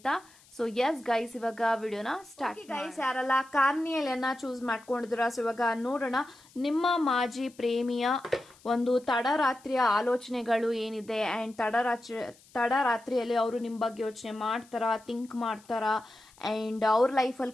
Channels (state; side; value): noise; left; hiss, 27 dB below the sound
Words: ಸೊ ಎಸ್ ಗೈಸ್, ಇವಾಗ ವಿಡಿಯೋನ ಸ್ಟಾರ್ಟ್. ಗೈಸ್, ಯಾರೆಲ್ಲ ಕಾರ್ನಿಯಲಿಯನ್ನ ಚೂಸ್ ಮಾಡ್ಕೊಂಡಿದ್ದೀರಾ, ಸೊ ಇವಾಗ ನೋಡೋಣ ನಿಮ್ಮ ಮಾಜಿ ಪ್ರೇಮಿಯ ಒಂದು ತಡರಾತ್ರಿಯ ಆಲೋಚನೆಗಳು ಏನಿದೆ ಅಂಡ್ ತಡರಾತ್ರಿಯಲ್ಲಿ ಅವರು ನಿಮ್ಮ ಬಗ್ಗೆ ಯೋಚನೆ ಮಾಡ್ತಾರಾ, ಥಿಂಕ್ ಮಾಡ್ತಾರಾ, ಅಂಡ್ ಅವ್ರ